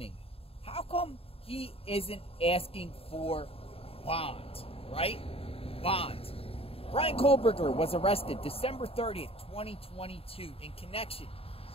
how come he isn't asking for bond, right? Bond. Bryan Kohberger was arrested December 30th, 2022 in connection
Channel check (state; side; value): late; right; 0.28 ms